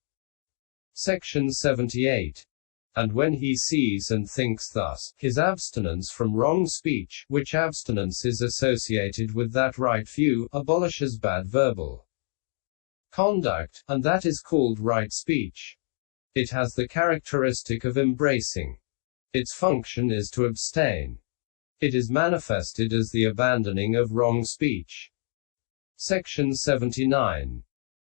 Section 78. And when he sees and thinks thus, his abstinence from wrong speech, which abstinence is associated with that right view, abolishes bad verbal conduct, and that is called right speech. It has the characteristic of embracing. Its function is to abstain. It is manifested as the abandoning of wrong speech. Section 79.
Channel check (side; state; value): right; silent; digital silence